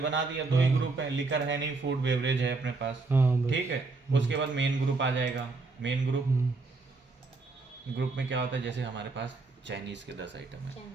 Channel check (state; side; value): quieter; left; 3.7 dB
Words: दिया, 2 ही ग्रुप है, लिकर है नहीं, फूड बेवरेज है अपने पास, ठीक है। उसके बाद मेन ग्रुप आ जाएगा। मेन ग्रुप में क्या होता है, जैसे हमारे पास चाइनीज के 10 आइटम है,